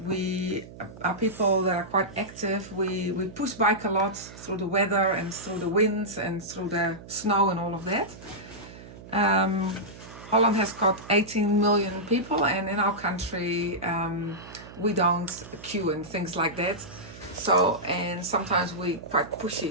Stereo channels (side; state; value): right; noise; hum, 16 dB below the sound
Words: We are people that are quite active. We push bike a lot through the weather and through the winds and through the snow and all of that. Holland has got 18 million people, and in our country we don't queue and things like that. So, and sometimes we quite